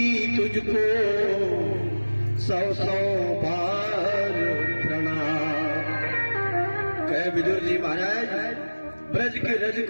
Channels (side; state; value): both; inverted; correlation -1.00